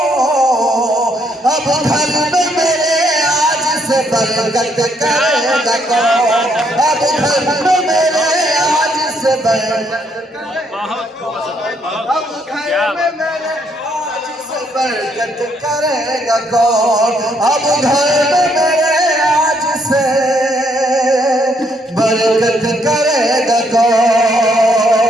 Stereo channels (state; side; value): normal; both; correlation 0.71